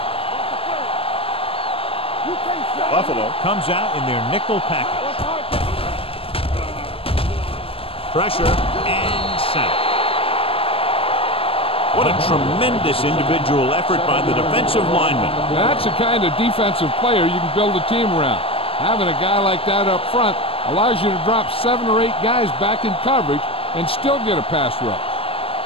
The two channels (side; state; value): right; late; 0.27 ms